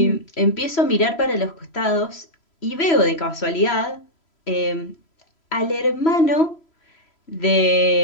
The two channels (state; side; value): late; right; 3.0 ms